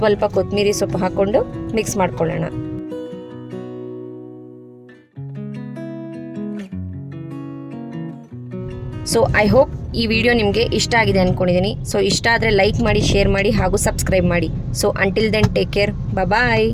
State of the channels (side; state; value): both; identical; correlation 1.00